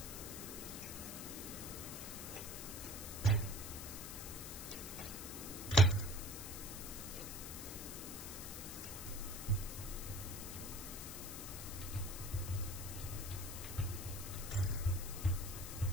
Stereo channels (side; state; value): left; noise; hiss, 7 dB below the sound